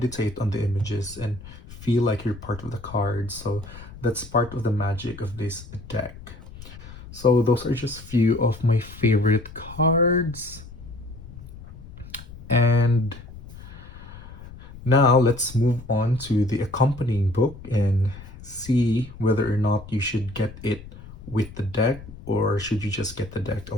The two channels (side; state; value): left; noise; rumble, 16 dB below the sound